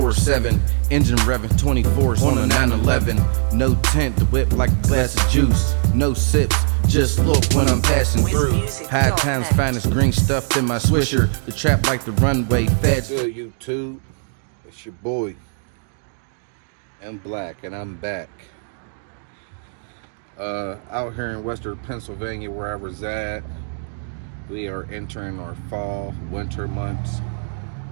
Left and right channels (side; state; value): left; silent; digital silence